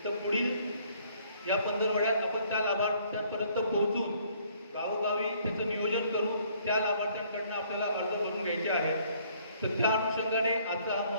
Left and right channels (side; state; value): both; inverted; correlation -0.62